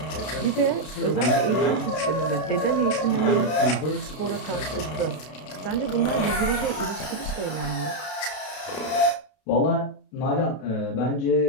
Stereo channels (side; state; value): right; late; 32 ms